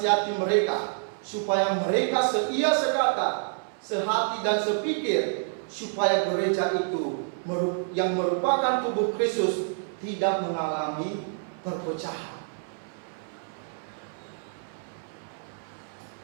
mereka supaya mereka seia sekata, sehati dan sepikir, supaya gereja itu yang merupakan tubuh Kristus tidak mengalami perpecahan.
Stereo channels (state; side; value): silent; left; 59 dB below the other